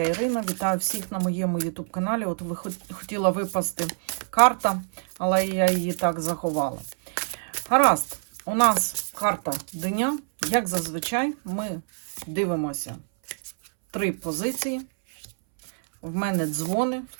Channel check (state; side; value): silent; left; 61 dB below the other